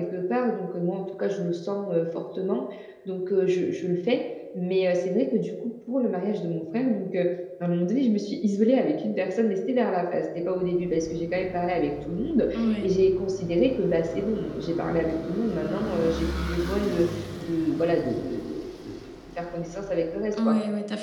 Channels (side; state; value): both; identical; correlation 1.00